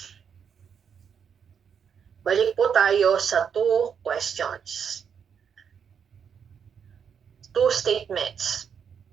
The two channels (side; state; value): left; quieter; 7.3 dB